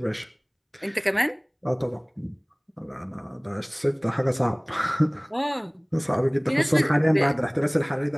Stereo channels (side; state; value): both; identical; correlation 1.00